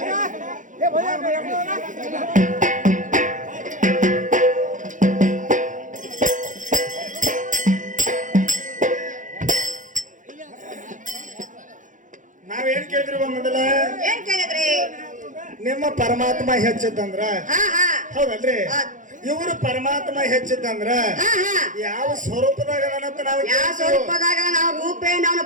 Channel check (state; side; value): late; left; 0.37 ms